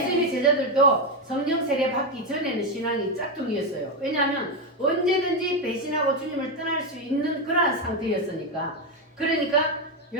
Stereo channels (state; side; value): normal; both; correlation 0.07